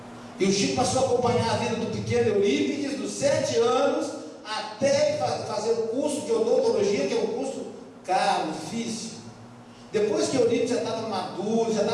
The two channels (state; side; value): identical; both; correlation 1.00